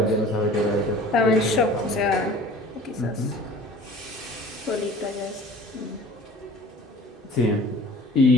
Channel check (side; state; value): both; normal; correlation 0.45